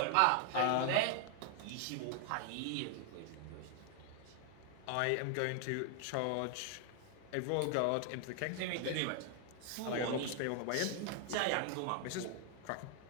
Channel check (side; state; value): both; different; correlation 0.00